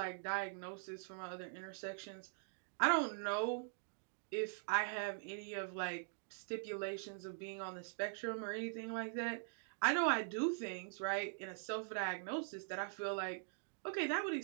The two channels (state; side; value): silent; left; digital silence